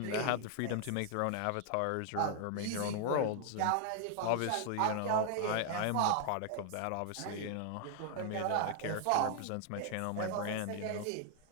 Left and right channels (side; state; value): both; different; correlation 0.00